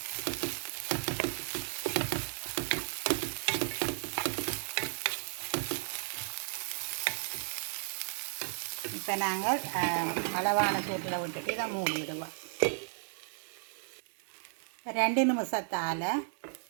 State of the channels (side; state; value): left; silent; digital silence